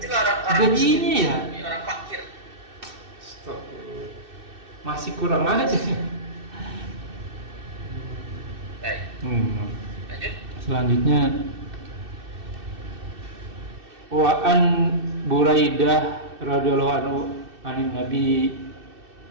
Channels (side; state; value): left; late; 2.6 ms